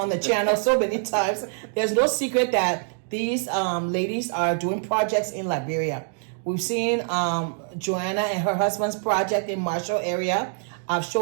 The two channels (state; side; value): silent; left; digital silence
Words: the channel so many times, there's no secret that these ladies are doing projects in Liberia. We've seen Joanna and her husband's project in Marshall area. I've